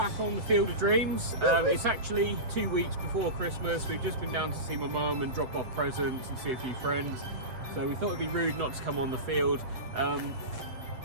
on the Field of Dreams. It's actually 2 weeks before Christmas. We've just been down to see my mum and drop off presents and see a few friends. So we thought it'd be rude not to come on the field. The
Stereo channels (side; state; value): left; late; 7.9 ms